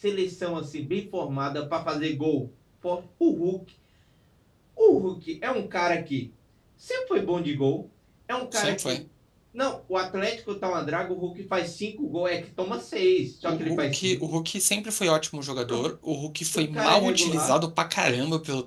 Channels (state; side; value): identical; both; correlation 1.00